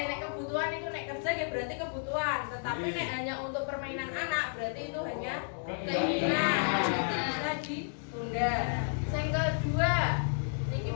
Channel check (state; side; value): silent; right; digital silence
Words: nek kebutuhan itu nek kerja ya berarti kebutuhan, tetapi nek hanya untuk permainan anak berarti itu hanya keinginan. Itu bisa ditunda. Yang kedua, niki